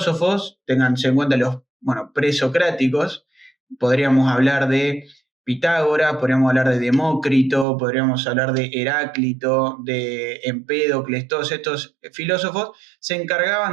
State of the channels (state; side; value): drops out; left; at 7.7 s